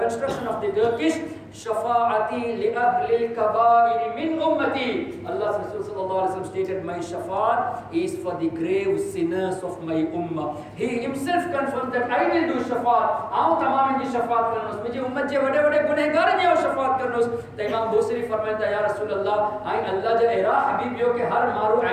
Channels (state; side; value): identical; both; correlation 1.00